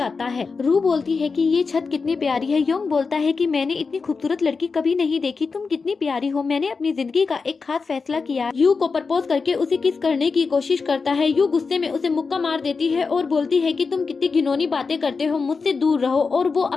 है। रू बोलती है कि ये छत कितनी प्यारी है। योंग बोलता है कि मैंने इतनी खूबसूरत लड़की कभी नहीं देखी, तुम कितनी प्यारी हो। मैंने अपनी जिंदगी का एक खास फैसला किया। यू को प्रपोज करके उसे किस करने की कोशिश करता है। यू गुस्से में उसे मुक्का मार देती है और बोलती है कि तुम कितनी घिनौनी बातें करते हो, मुझसे दूर रहो। और वो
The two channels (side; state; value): right; quieter; 4.7 dB